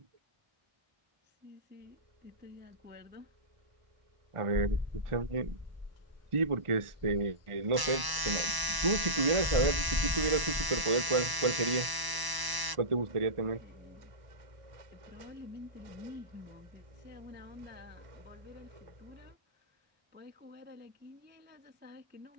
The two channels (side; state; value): left; late; 1.0 ms